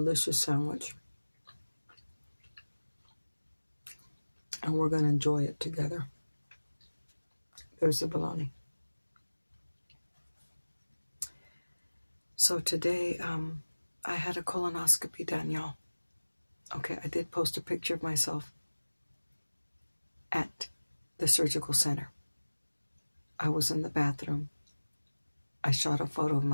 sandwich. And we're going to enjoy it together. There's the bologna. So today, I had a colonoscopy done, y'all. Okay, I did post a picture of myself at the surgical center. I was in the bathroom. I shot a photo of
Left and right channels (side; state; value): both; inverted; correlation -1.00